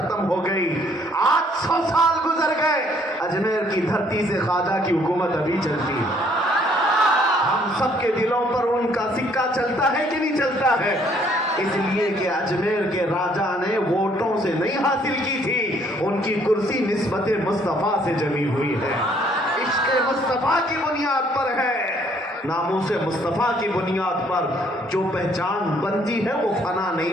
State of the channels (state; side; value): normal; both; correlation 0.64